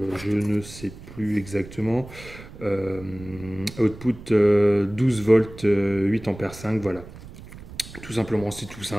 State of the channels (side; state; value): right; noise; rumble, 16 dB below the sound